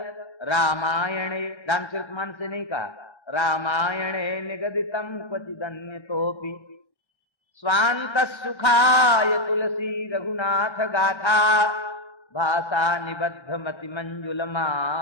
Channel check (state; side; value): late; right; 1.1 ms